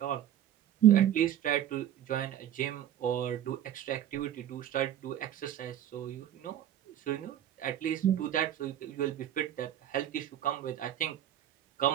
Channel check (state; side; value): quieter; left; 11.3 dB